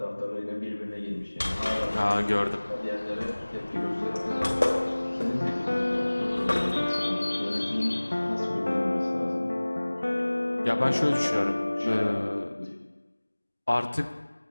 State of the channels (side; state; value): both; inverted; correlation -1.00